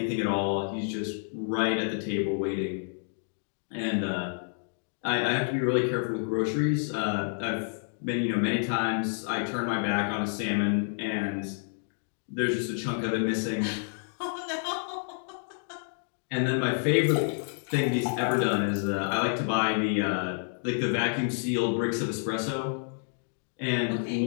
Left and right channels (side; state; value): right; silent; 58 dB below the other